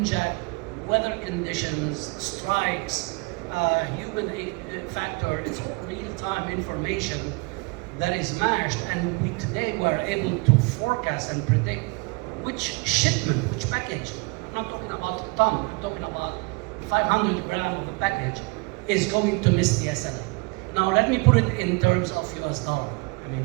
weather conditions, strikes, human factor. It's all real-time information that is matched, and we today were able to forecast and predict which shipment, which package. I'm not talking about a ton, I'm talking about 500 grams of a package is going to miss the SLA. Now let me put it in terms of US dollar, I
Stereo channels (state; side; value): quieter; left; 29.2 dB